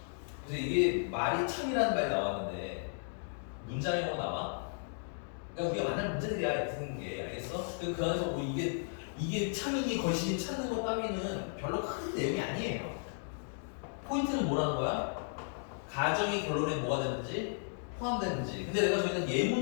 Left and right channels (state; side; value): silent; right; digital silence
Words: 그래서 이게 말이 참이라는 말이 나왔는데 문장이라고 나와? 그러니까 우리가 만날 문제들이야 이렇게 생긴 게 알겠어? 그 안에서 뭐 이게 참이니 거시니 찾는 것 따위는 별로 큰 내용이 아니에요. 포인트는 뭐라는 거야? 가정이 결론에 뭐가 되는지 포함되는지. 근데 내가 저희는